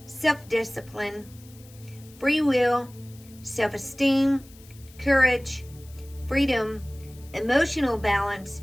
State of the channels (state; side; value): noise; left; hiss, 24 dB below the sound